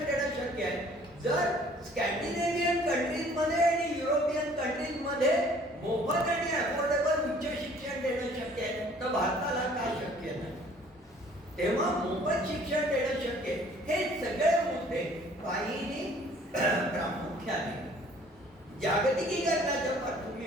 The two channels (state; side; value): normal; both; correlation 0.55